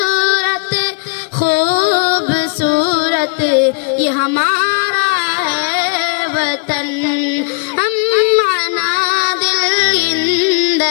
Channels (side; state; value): right; quieter; 33.1 dB